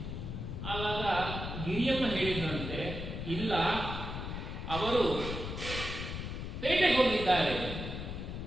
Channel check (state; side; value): noise; left; rumble, 6 dB below the sound